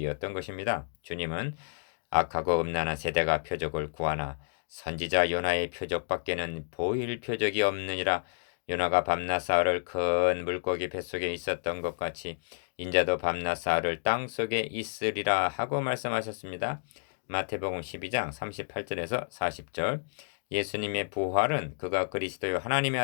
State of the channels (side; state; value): right; silent; digital silence